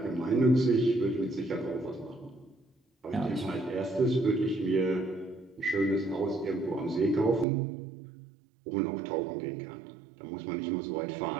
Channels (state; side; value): drops out; left; at 7.5 s